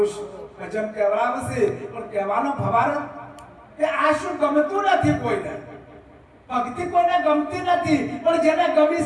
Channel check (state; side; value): identical; both; correlation 1.00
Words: ભજન કહેવાવે છે, પણ કહેવાનો ભવાર કે આ શું ગમતું નથી કોઈને. ભક્તિ કોઈને ગમતી નથી, પણ જેને ગમી